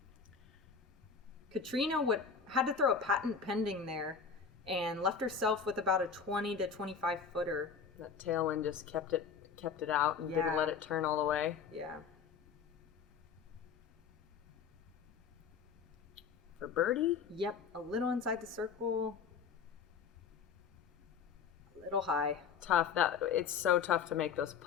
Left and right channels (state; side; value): quieter; right; 6.2 dB